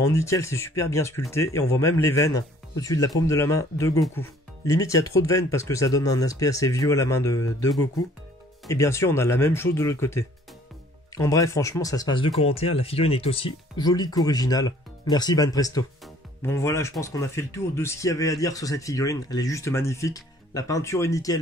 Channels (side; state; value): both; normal; correlation 0.56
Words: nickel, c'est super bien sculpté. Et on voit même les veines au-dessus de la paume de la main de Goku. Limite, il y a trop de veines parce que ça donne un aspect assez vieux à la main de Goku. Et bien sûr, on a la même chose de l'autre côté. En bref, franchement, ça se passe de commentaires. La figurine est aussi jolie qu'originale. Merci Banpresto. Bon voilà, je pense qu'on a fait le tour de ce qu'il y avait à dire sur cette figurine. Elle est juste magnifique. La peinture est